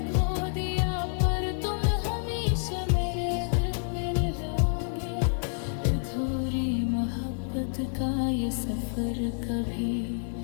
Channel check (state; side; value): silent; right; 59 dB below the other